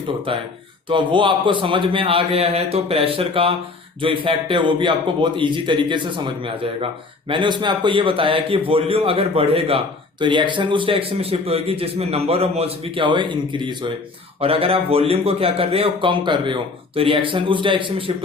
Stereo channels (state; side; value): quieter; right; 3.8 dB